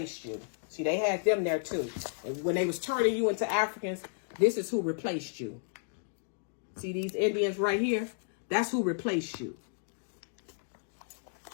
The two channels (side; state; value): right; silent; digital silence